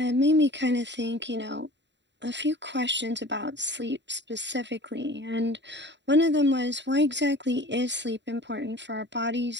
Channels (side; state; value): left; late; 0.52 ms